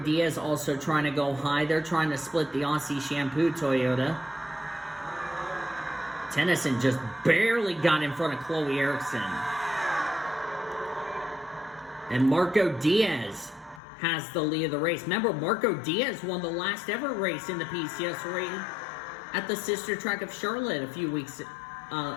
also trying to go high. They're trying to split the Aussie Shampoo Toyota. Tennyson just barely got in front of Chloe Erickson. And Marco Diaz has the lead of the race. Remember, Marco Diaz won the last ever race in the PCS race at the sister track of Charlotte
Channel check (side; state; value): right; drops out; at 13.8 s